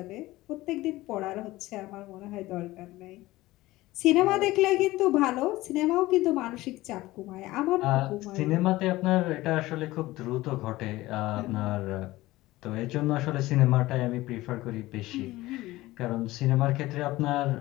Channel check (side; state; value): right; quieter; 18.0 dB